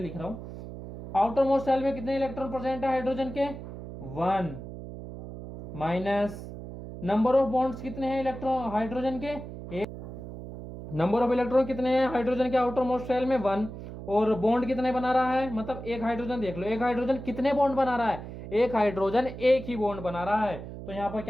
रहा हूं। आउटर मोस्ट शेल में कितने इलेक्ट्रॉन प्रेजेंट है हाइड्रोजन के, 1 माइनस नंबर ऑफ बॉन्ड्स कितने हैं इलेक्ट्रॉन हाइड्रोजन के, नंबर ऑफ इलेक्ट्रॉन कितने हैं हाइड्रोजन के आउटर मोस्ट शेल में 1, और बॉन्ड कितने बना रहा है, मतलब एक हाइड्रोजन देख लो, एक हाइड्रोजन कितने बॉन्ड बना रहा है, एक हाइड्रोजन एक ही बॉन्ड बना रहा है, तो यहां पर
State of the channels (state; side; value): noise; right; hum, 11 dB below the sound